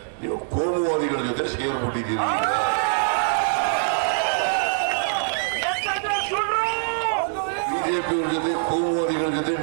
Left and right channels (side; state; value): left; silent; 63 dB below the other